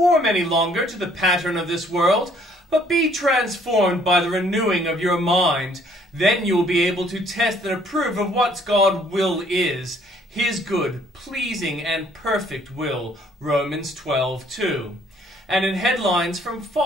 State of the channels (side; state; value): both; normal; correlation 0.62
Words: any longer to the pattern of this world, but be transformed by the renewing of your mind. Then you will be able to test and approve of what God's will is, his good, pleasing, and perfect will. Romans 12:2. And in headlines from